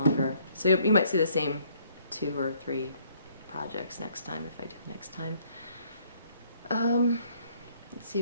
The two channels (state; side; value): inverted; both; correlation -0.64